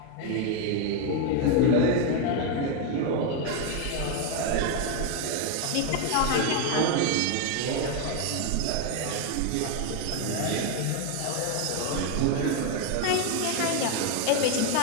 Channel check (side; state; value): both; different; correlation 0.01